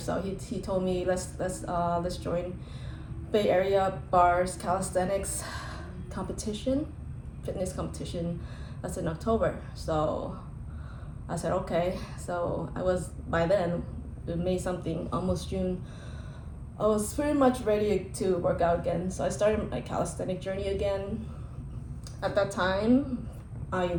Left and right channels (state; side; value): identical; both; correlation 1.00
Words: he told me let's join Bay Area Bars Calisthenics competition, fitness competition. That's in October. So I said okay. So I was, by then, May something, almost June, I was pretty much ready to work out again. So I started my calisthenic journey again. At that time, I